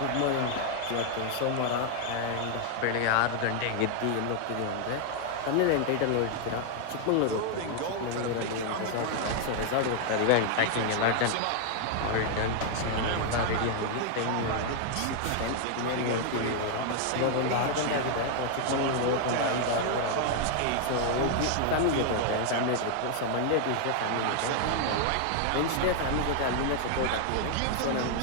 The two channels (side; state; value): both; different; correlation 0.00